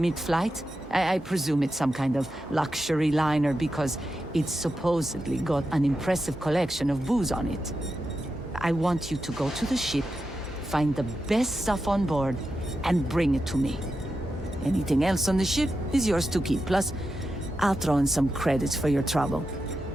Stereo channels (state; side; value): normal; both; correlation 0.89